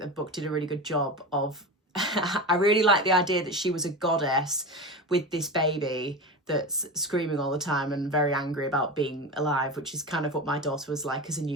book did a really good job of I really like the idea that she was a goddess with this baby that's screaming all the time and very angry about being alive, which is kind of what my daughter was like as a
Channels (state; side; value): normal; both; correlation 0.25